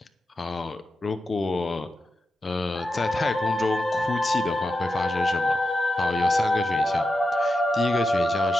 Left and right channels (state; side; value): normal; both; correlation 0.89